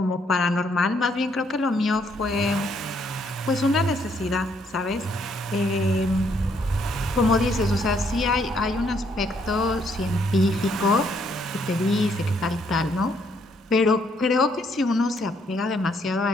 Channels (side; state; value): both; normal; correlation 0.70